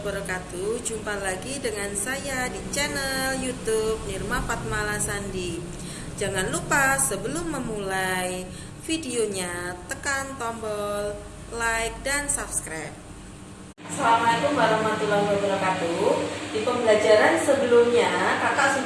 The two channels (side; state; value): both; identical; correlation 1.00